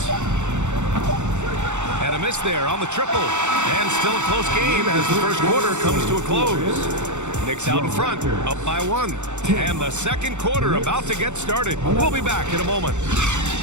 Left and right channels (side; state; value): left; late; 0.84 ms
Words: And a miss there on the triple. And still a close game as the first quarter comes to a close. Knicks out in front, up by 1. And the second quarter about to get started. We'll be back in a moment.